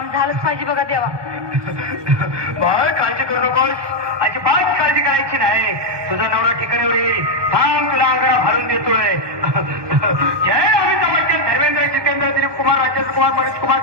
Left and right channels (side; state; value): left; late; 1.2 ms